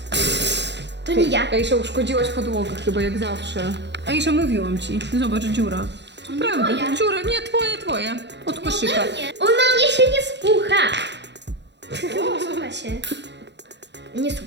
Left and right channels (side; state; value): left; late; 0.51 ms